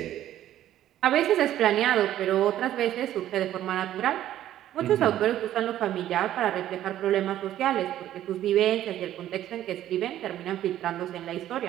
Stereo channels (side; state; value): left; quieter; 12.4 dB